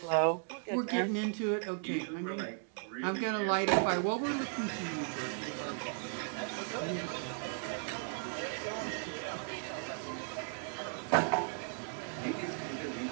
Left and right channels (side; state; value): left; silent; 54 dB below the other